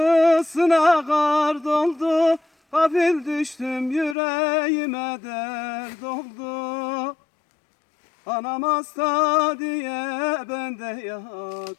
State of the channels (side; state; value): right; drops out; at 4.2 s